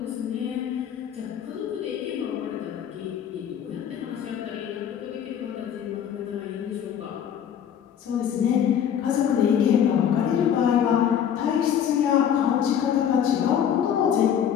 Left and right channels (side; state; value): right; quieter; 8.9 dB